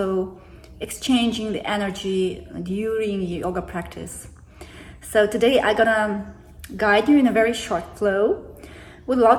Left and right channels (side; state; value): both; identical; correlation 1.00